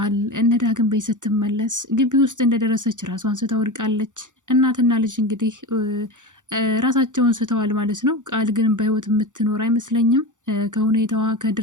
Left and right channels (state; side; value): late; left; 0.86 ms